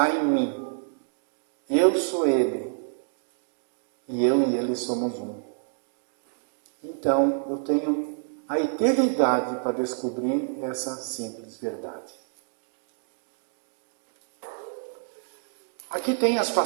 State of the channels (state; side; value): silent; left; digital silence